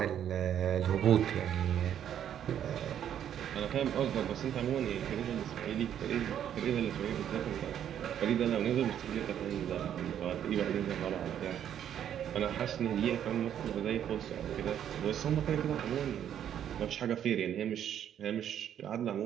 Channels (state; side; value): quieter; left; 9.8 dB